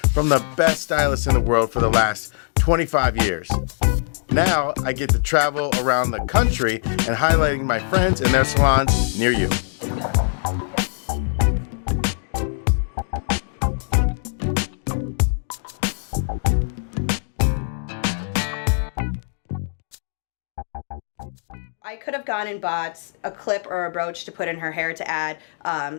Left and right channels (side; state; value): right; silent; digital silence